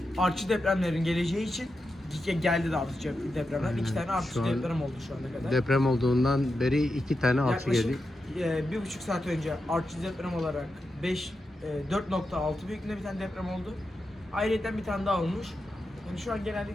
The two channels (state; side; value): normal; both; correlation 0.88